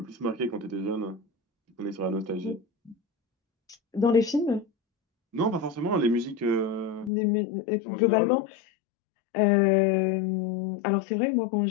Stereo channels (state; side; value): drops out; right; at 7.1 s